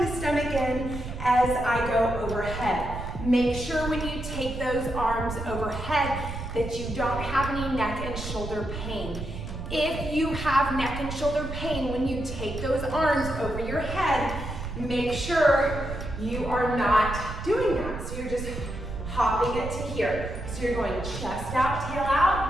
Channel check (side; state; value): right; noise; rumble, 7 dB below the sound